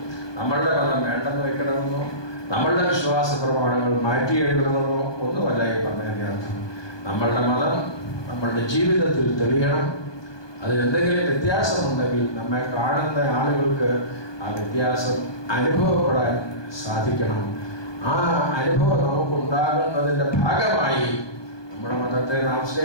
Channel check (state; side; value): late; right; 1.2 ms